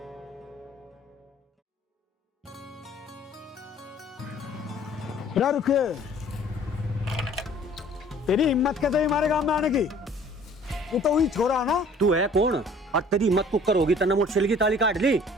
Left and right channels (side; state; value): both; normal; correlation 0.52